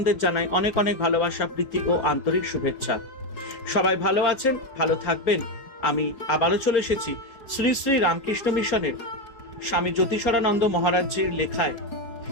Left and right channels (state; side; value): late; right; 4.4 ms